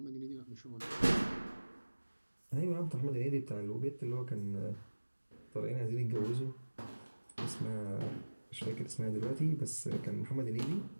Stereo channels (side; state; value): both; inverted; correlation -1.00